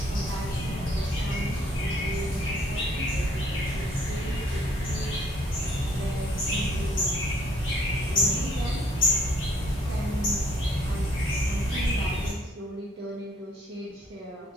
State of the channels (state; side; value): normal; both; correlation 0.63